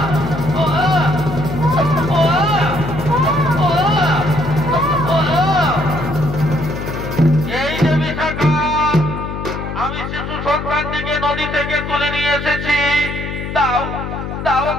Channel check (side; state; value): left; noise; hum, 6 dB below the sound